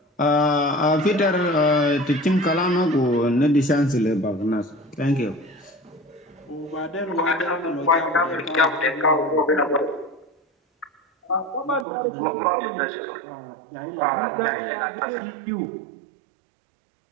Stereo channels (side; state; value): left; drops out; at 11.9 s